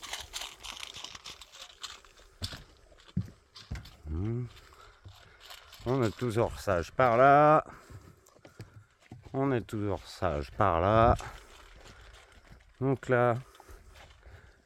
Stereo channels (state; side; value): identical; both; correlation 1.00